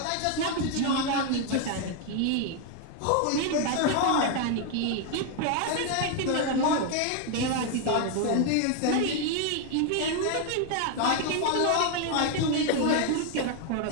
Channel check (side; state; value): both; different; correlation 0.01